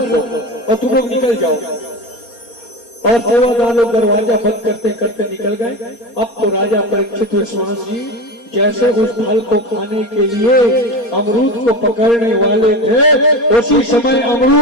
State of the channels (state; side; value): late; right; 4.3 ms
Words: दो और तुम लोग निकल जाओ। और सेवादार लोग दरवाजा बंद करते करते निकल गए। अब तो राजा परीक्षित विश्वास जी जैसे उस फल को खाने के लिए अमरूद को पकड़ने वाले थे, उसी समय